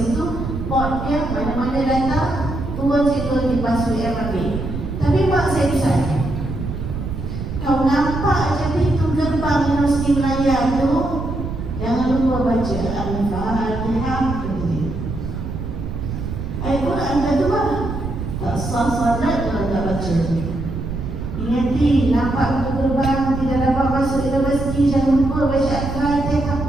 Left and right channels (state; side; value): noise; right; rumble, 6 dB below the sound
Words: Port dia mana-mana datang, turun situ di bas UM ambil. Tapi mak saya pesan, kau nampak je pintu gerbang Universiti Melayu tu, jangan lupa baca Al-Fatihah. Ayat Quran dah tu lah. Tak sah salat kalau tak baca. Ingati, nampak pintu gerbang, tidak dapat masuk universiti, jangan lupa baca Al-Fatihah.